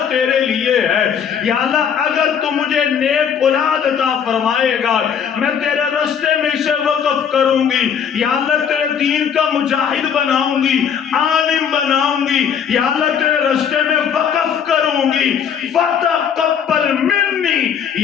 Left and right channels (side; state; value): right; quieter; 7.7 dB